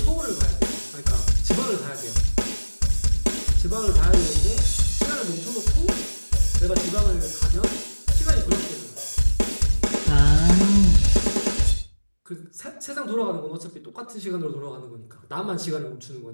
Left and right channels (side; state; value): both; inverted; correlation -1.00